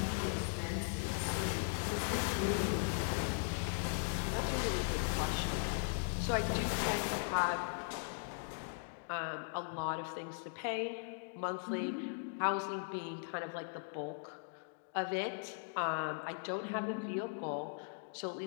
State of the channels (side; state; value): right; silent; digital silence